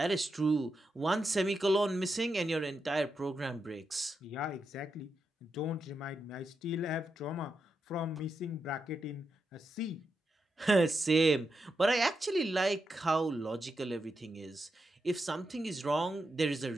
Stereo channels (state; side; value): normal; both; correlation 0.86